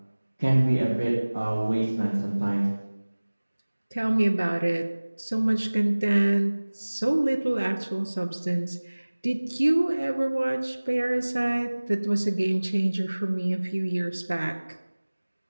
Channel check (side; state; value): both; inverted; correlation -1.00